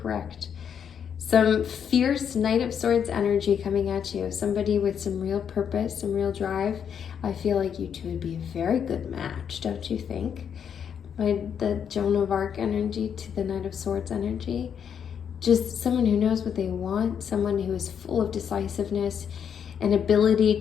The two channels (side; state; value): right; quieter; 7.9 dB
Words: Some fierce Knight of Swords energy coming at you. Somebody with some real purpose, some real drive. I feel like you two would be a very good match, don't you think? The Joan of Arc energy to the Knight of Swords energy. Just someone who knows what they want, someone who is full of decisiveness and ability